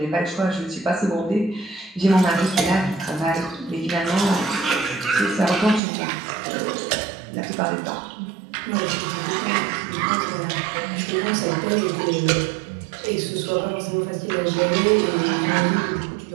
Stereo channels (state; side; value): drops out; left; at 5.8 s